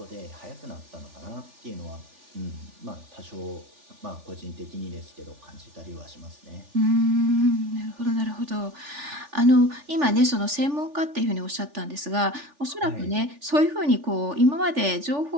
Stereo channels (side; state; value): left; late; 3.4 ms